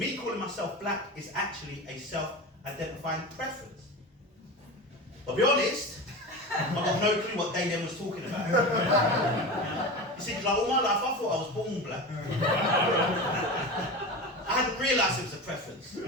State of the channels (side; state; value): both; normal; correlation 0.27